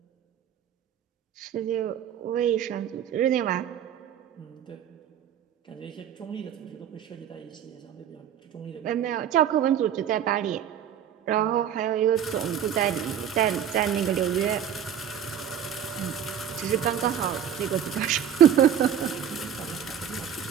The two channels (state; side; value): quieter; left; 9.2 dB